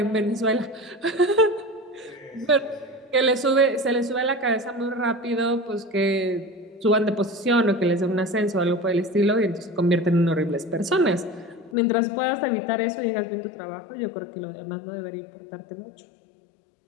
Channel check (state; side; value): drops out; right; at 11.8 s